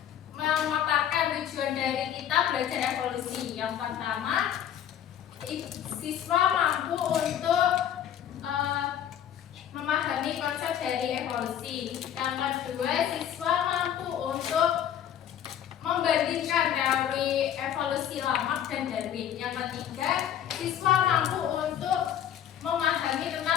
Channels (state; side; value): quieter; right; 10.1 dB